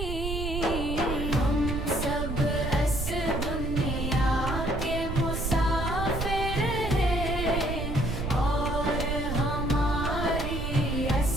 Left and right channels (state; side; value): noise; right; rumble, 4 dB below the sound